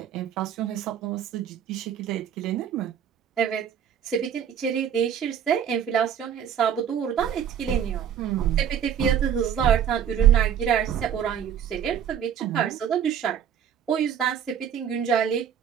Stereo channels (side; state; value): left; quieter; 8.7 dB